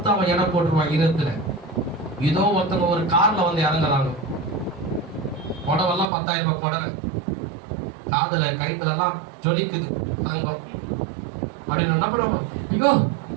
அவன் இடம் போட்டுருவான் இருத்துல. இதோ ஒருத்தவங்க ஒரு கார்ல வந்து இறங்குறாங்க, புடவெல்லாம் 10,000 ரூபாய் புடவை, காதுல கைத்துல எல்லாம் ஜொலிக்குது தங்கம் அப்படின்னு என்ன பண்ணுவாங்க? ஐயோ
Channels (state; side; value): drops out; left; at 6.1 s